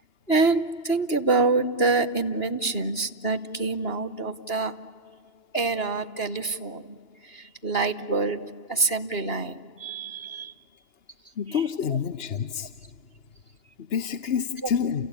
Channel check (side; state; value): right; late; 2.9 ms